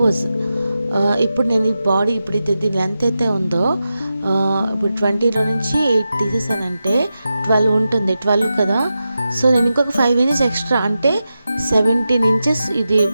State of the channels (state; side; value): inverted; both; correlation -0.91